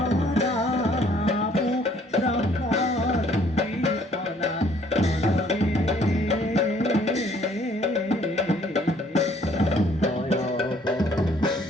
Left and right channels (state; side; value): normal; both; correlation 0.61